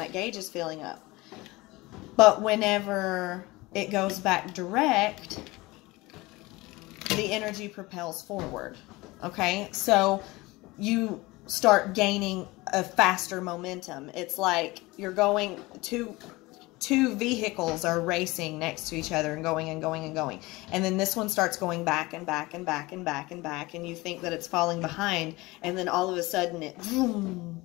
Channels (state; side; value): quieter; right; 21.6 dB